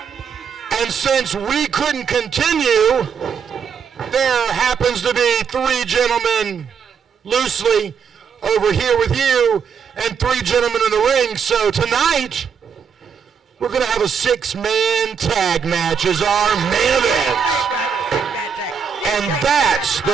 And since we couldn't continue, there happens to be 3 gentlemen loosely over here with you and 3 gentlemen in the ring. So tonight, we're going to have a 6-man tag match as our main event. And that's the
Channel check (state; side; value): quieter; left; 6.8 dB